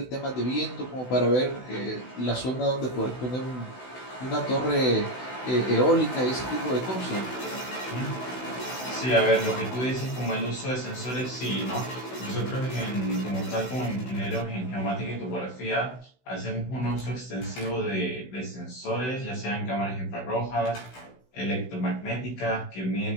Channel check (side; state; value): right; late; 16 ms